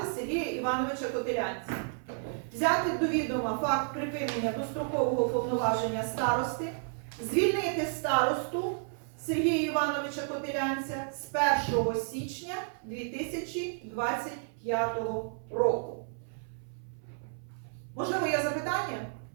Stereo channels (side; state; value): left; silent; 57 dB below the other